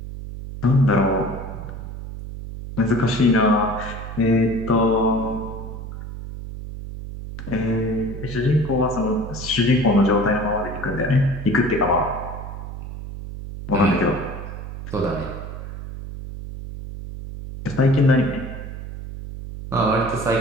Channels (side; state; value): right; noise; hum, 9 dB below the sound